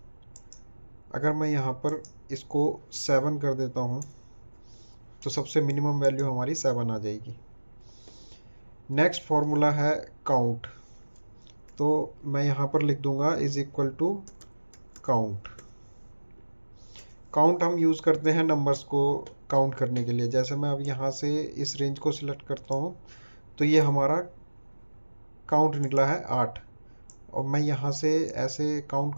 अगर मैं यहाँ पर इसको 7 कर देता हूँ तो सबसे मिनिमम वैल्यू हमारी 7 आ जाएगी। नेक्स्ट फॉर्मूला है काउंट। तो मैं यहाँ पर लिख दूंगा is equal to count. Count हम यूज़ करते हैं नंबर्स को काउंट करने के लिए। जैसे मैं अब यहाँ से इस रेंज को सिलेक्ट करता हूँ तो ये हमारा काउंट निकला है 8। और मैं यहाँ से ऐसे काउंट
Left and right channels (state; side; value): inverted; both; correlation -1.00